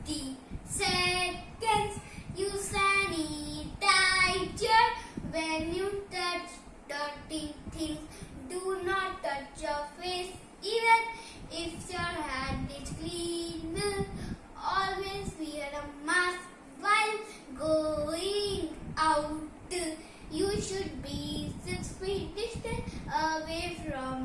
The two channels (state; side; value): identical; both; correlation 1.00